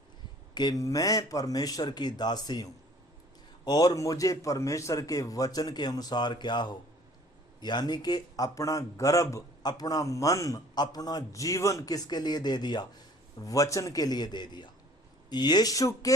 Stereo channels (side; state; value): both; normal; correlation 0.53